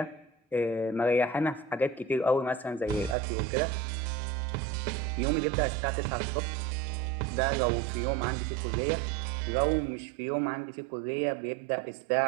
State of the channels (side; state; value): left; drops out; at 3.2 s